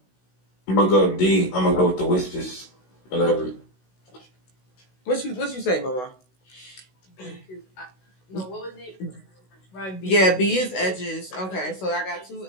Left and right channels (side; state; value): right; late; 16 ms